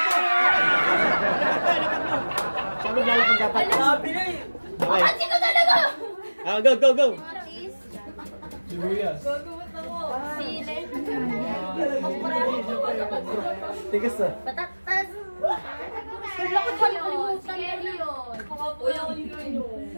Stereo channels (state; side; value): inverted; both; correlation -1.00